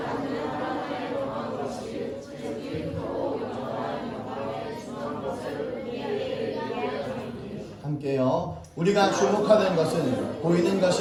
함께요. 우리가 주목하는 것은 보이는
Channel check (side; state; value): both; identical; correlation 1.00